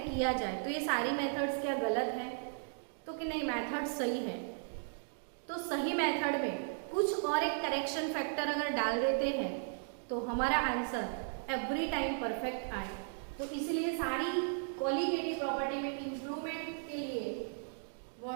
किया जाए। तो ये सारी मेथड्स क्या गलत है? तो कि नहीं, मेथड सही है। तो सही मेथड में कुछ और एक करेक्शन फैक्टर अगर डाल देते हैं तो हमारा आंसर एवरी टाइम परफेक्ट आए। तो इसलिए सारी कोलिगेटिव प्रॉपर्टी में इंप्रूवमेंट के लिए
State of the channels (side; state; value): left; silent; digital silence